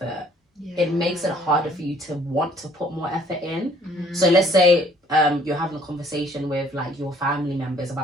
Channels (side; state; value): both; normal; correlation 0.60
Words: it makes it harder for you to want to put more effort in. So let's say you're having a conversation with like your family members